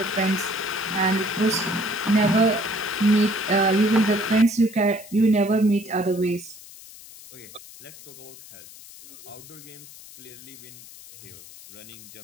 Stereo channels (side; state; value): left; noise; hiss, 18 dB below the sound